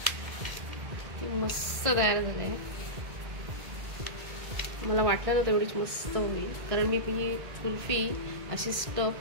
मस्त तयार झाले. मला वाटलं नव्हतं एवढीच मस्त होईल, कारण मी ही कुल्फी अशी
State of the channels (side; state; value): left; late; 1.5 ms